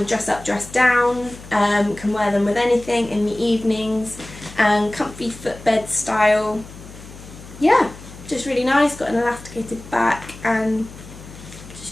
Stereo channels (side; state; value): left; noise; hum, 17 dB below the sound